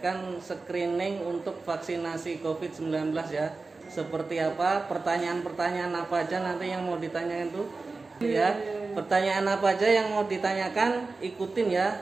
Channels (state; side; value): quieter; left; 3.8 dB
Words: screening untuk vaksinasi COVID-19 ya. Seperti apa, pertanyaan-pertanyaan apa aja nanti yang mau ditanyakan tuh ya. Pertanyaan apa aja yang mau ditanyakan, ikutin